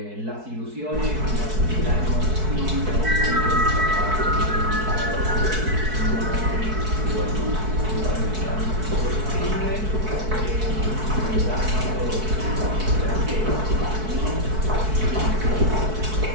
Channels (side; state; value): left; late; 4.6 ms